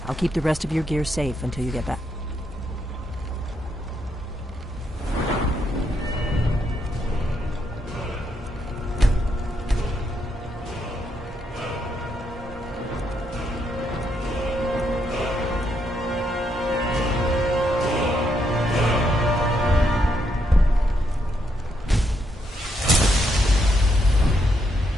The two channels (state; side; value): normal; both; correlation 0.78